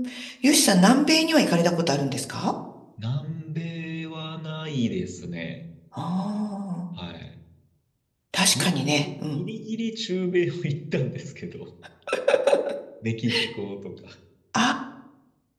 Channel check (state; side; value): identical; both; correlation 1.00